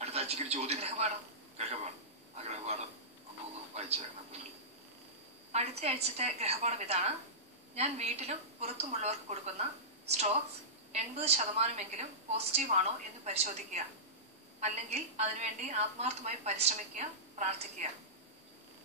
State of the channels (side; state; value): both; normal; correlation -0.18